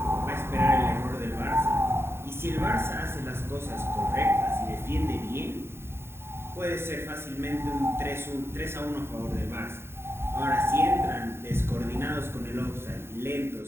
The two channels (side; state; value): left; late; 0.12 ms